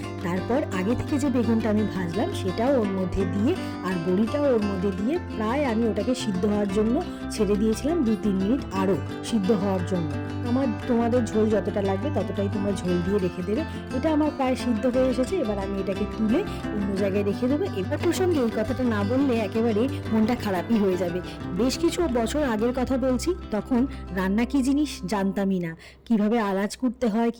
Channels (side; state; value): both; identical; correlation 1.00